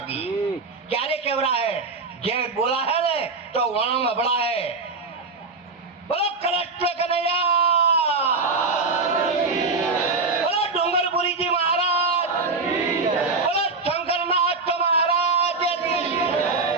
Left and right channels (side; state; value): left; quieter; 4.0 dB